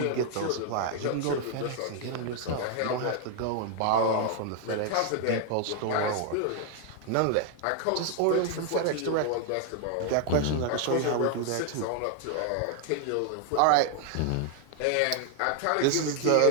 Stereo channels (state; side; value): different; both; correlation 0.00